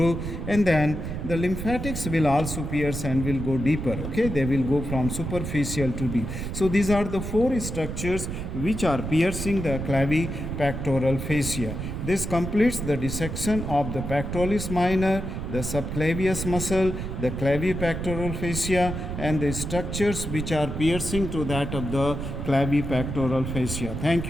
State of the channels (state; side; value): noise; right; rumble, 5 dB below the sound